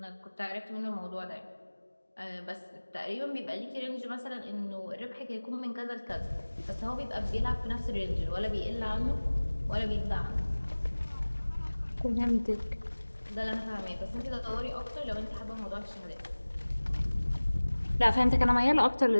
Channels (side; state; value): both; inverted; correlation -1.00